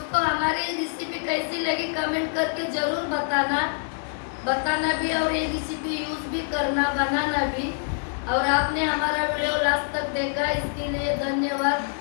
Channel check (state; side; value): silent; right; digital silence